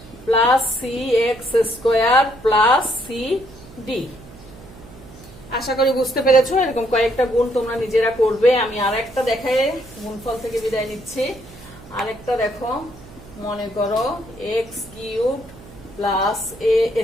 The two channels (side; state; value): right; noise; hum, 19 dB below the sound